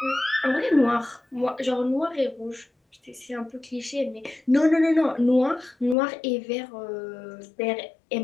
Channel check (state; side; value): drops out; right; at 6.0 s